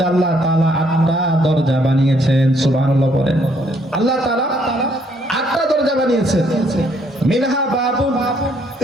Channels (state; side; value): normal; both; correlation 0.68